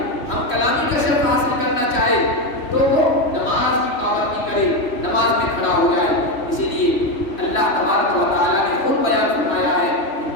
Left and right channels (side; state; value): right; late; 3.1 ms